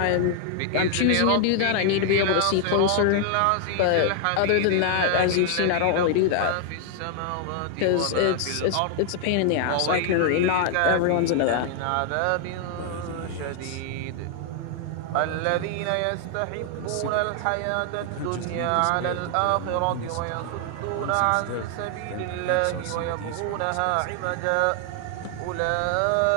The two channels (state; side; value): different; both; correlation 0.00